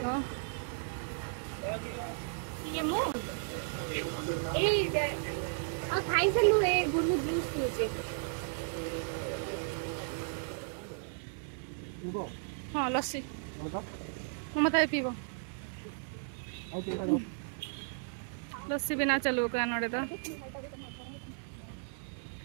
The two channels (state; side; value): silent; left; digital silence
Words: को ये मु ए आ खाई से लु ए गुरु जूस पीछे हाँ लस्सी मत पीब लस्सी बिना चलू का नोड़े तो